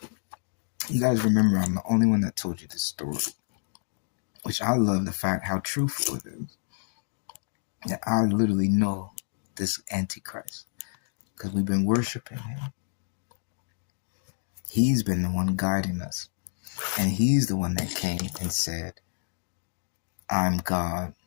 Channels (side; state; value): right; silent; digital silence